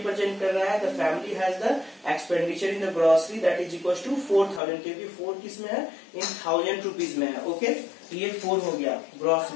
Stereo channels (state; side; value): drops out; right; at 4.6 s